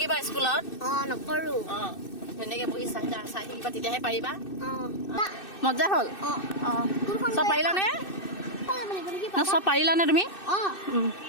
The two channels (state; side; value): late; right; 2.6 ms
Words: স্কুলত। নকৰোঁ। ধুনীয়াকৈ বহি চাই থাকিবা, তেতিয়াহে পাৰিবা। মজা হ'ল। চব পাৰিলানে? চব পাৰিলানে তুমি?